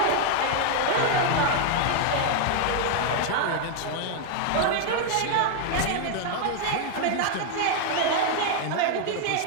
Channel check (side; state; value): both; different; correlation 0.00